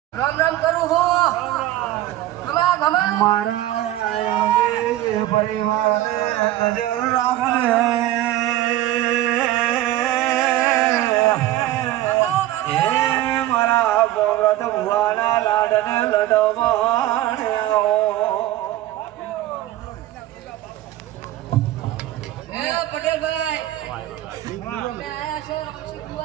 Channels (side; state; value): left; quieter; 14.6 dB